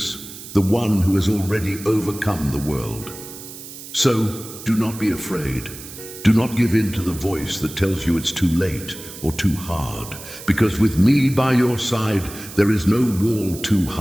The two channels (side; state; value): right; noise; hiss, 14 dB below the sound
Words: the one who has already overcome the world. So, do not be afraid. Do not give in to the voice that tells you it's too late or too hard, because with me by your side, there is no wall too